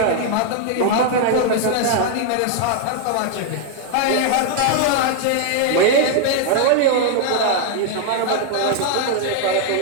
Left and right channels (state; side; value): different; both; correlation 0.00